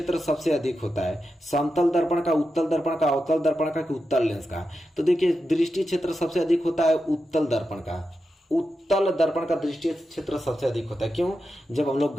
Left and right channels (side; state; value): both; normal; correlation 0.89